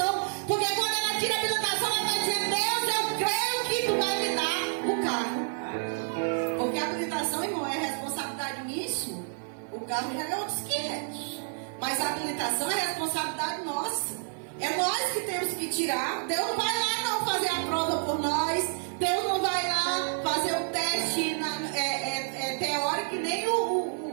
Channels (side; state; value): left; silent; 58 dB below the other